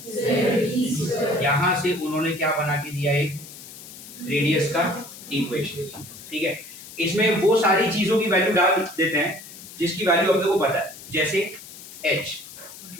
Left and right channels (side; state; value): left; noise; hiss, 16 dB below the sound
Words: z। यहाँ से उन्होंने क्या बना के दिया, एक रेडियस का इक्वेशन, ठीक है। इसमें वो सारी चीजों की वैल्यू डाल देते हैं जिसकी वैल्यू अपने को पता है, जैसे h